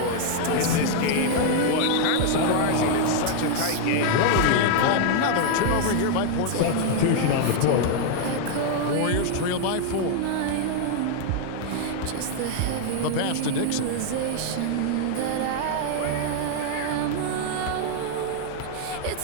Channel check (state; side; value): different; both; correlation 0.00